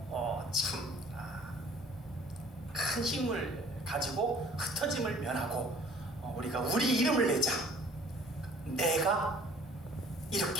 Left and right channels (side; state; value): both; normal; correlation 0.54